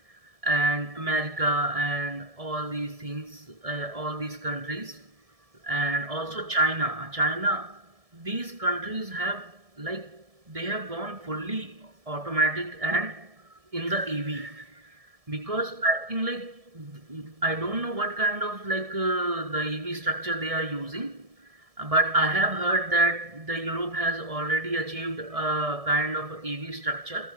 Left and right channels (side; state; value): left; late; 1.7 ms